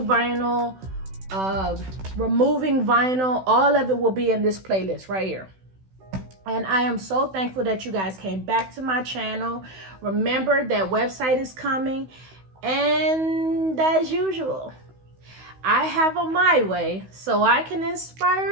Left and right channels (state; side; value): late; left; 16 ms